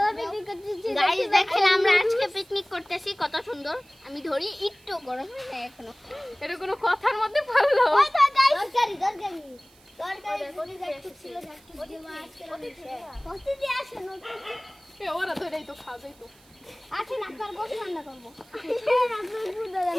পিকনিক করতেছি গাইস দেখেন আমরা আজকে পিকনিক করতেছি কত সুন্দর আমি ধরি একটু গরম হয় না এখনো এটা কোনো কথার মধ্যে পড়লো ওই তো গাইস দরকারি বলি যাচ্ছে ছিল যাচ্ছে দেওয়া আজকে কষ্ট দিয়ে আসে নতুন এ ওরা ধরেই তো খাবেই তো আচ্ছা না আপনার গোশ রান্না করব আপনার ফুড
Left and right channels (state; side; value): noise; right; hiss, 28 dB below the sound